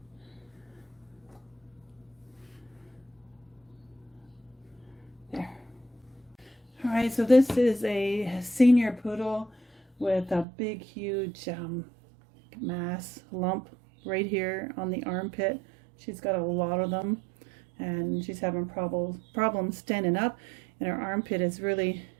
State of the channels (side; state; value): left; drops out; at 10.5 s